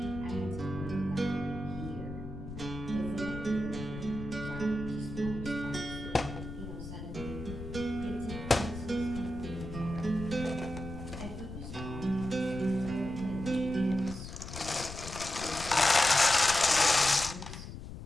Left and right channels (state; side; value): noise; left; rumble, 10 dB below the sound